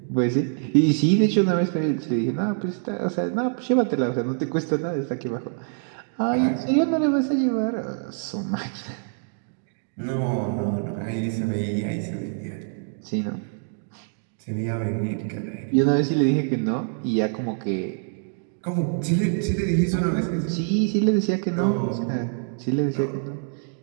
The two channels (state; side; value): silent; left; digital silence